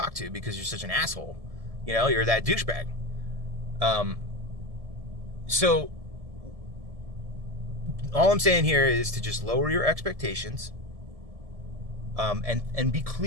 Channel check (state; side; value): late; left; 1.7 ms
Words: to because you're such an asshole. You're that douchebag. So all I'm saying here is to just lower your expectations, and be